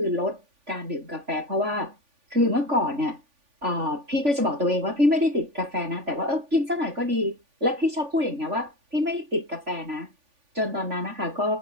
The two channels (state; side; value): late; left; 3.5 ms